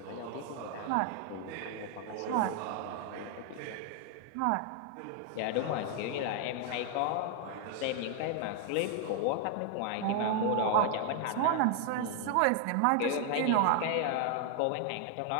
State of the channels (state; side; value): different; both; correlation 0.00